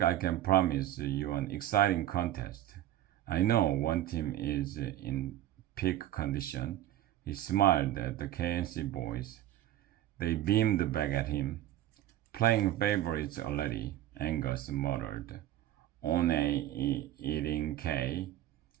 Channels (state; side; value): quieter; left; 13.0 dB